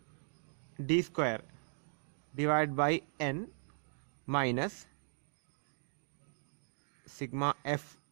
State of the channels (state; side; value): silent; left; digital silence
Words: D square divide by n minus sigma F